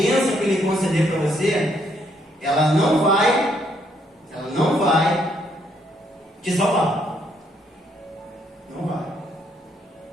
que Ele conceder para você, ela não vai te salvar. Não vai.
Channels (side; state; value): both; normal; correlation 0.71